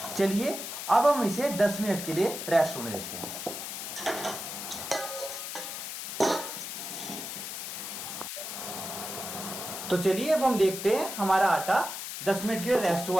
चलिए अब हम इसे 10 मिनट के लिए रेस्ट होने देते हैं। तो चलिए अब हम देखते हैं हमारा आटा 10 मिनट के लिए रेस्ट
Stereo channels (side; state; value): left; noise; hiss, 7 dB below the sound